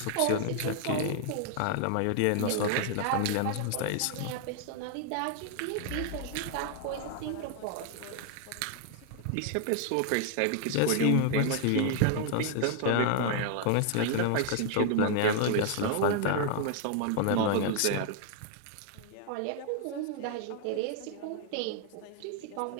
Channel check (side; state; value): both; different; correlation 0.00